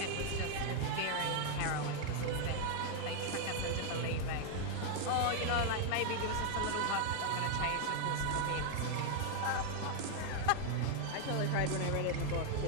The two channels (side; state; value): both; different; correlation 0.00